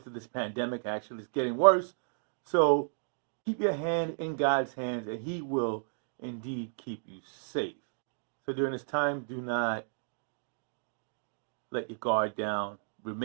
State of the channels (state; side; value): silent; left; digital silence